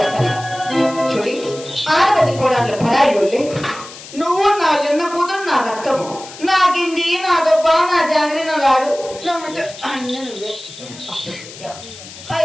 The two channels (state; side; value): noise; left; hiss, 16 dB below the sound